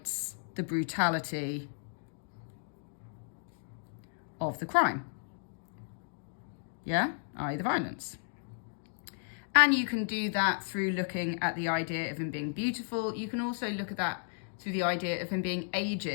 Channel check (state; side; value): silent; right; digital silence